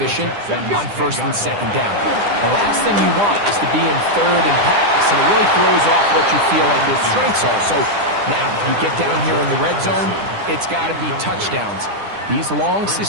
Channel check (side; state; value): left; late; 9.9 ms